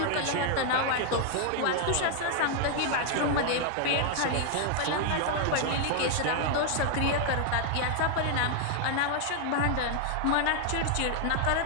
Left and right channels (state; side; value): different; both; correlation 0.00